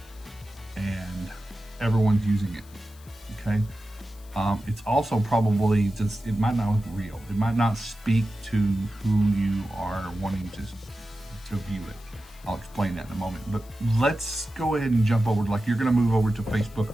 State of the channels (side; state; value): left; noise; hiss, 25 dB below the sound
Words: and everyone's using it. Okay, it's also probably just, it might not look real. It might not speak to who you are wanting to view it. I'll explain that in a moment, but let's go ahead and jump over, like you're going to move over to Facebook